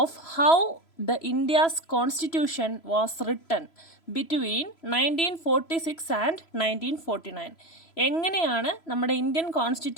how the India's constitution was written between 1946 and 1949. എങ്ങനെയാണ് നമ്മുടെ ഇന്ത്യൻ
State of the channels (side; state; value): right; late; 3.0 ms